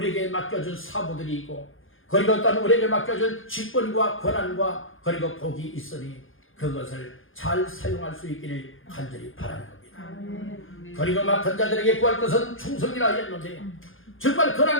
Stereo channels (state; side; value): late; right; 0.58 ms